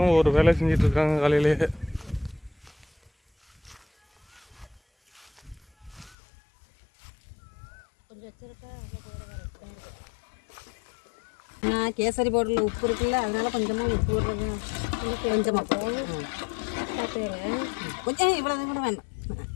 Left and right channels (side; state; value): right; drops out; at 6.2 s